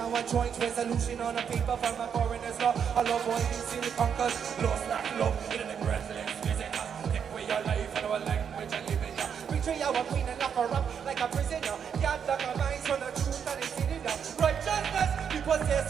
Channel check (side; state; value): left; quieter; 7.5 dB